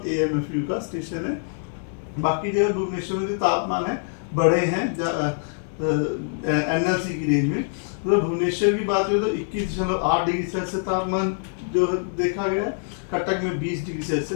AMFU का स्टेशन है। बाकी जगह भुवनेश्वर में जो तापमान है बड़े हैं NLC की रेंज में। तो भुवनेश्वर की बात करें तो 21.8 डिग्री सेल्सियस तापमान जो देखा गया है। कटक में 20 डिग्री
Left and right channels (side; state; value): right; silent; digital silence